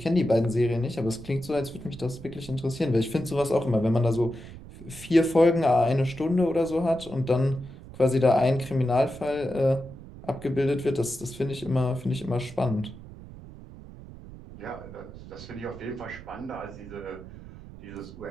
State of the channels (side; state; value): right; noise; rumble, 16 dB below the sound